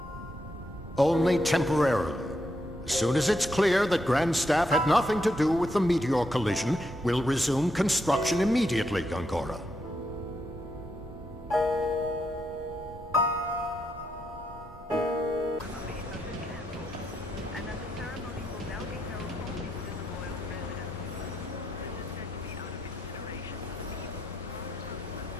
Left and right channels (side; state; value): both; normal; correlation 0.80